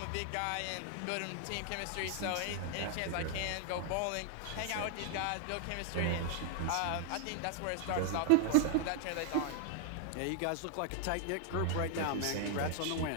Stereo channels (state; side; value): different; both; correlation 0.00